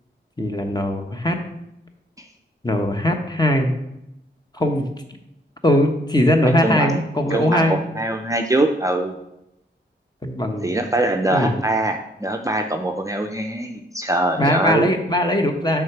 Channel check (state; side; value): normal; both; correlation 0.63